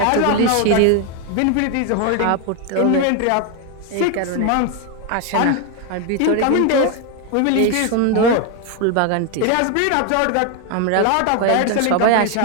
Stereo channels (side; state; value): both; different; correlation 0.01